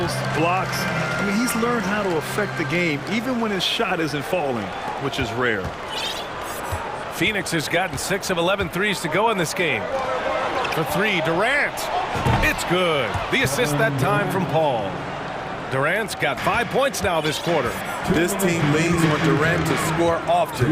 blocks. I mean, he's learned how to affect the game, even when his shot isn't falling, which is rare. Phoenix has gotten 6 of 11 threes to go in this game. For 3, Durant. It's good. The assist that time from Paul. Durant's got 5 points now this quarter. This team leans on Durant to score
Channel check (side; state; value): both; identical; correlation 1.00